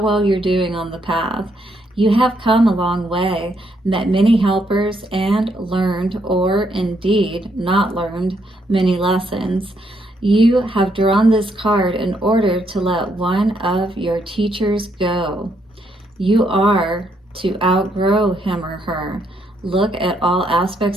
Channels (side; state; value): both; normal; correlation 0.74